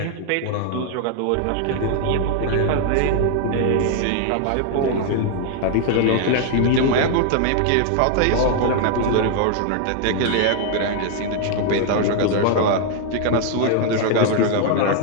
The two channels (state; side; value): different; both; correlation 0.00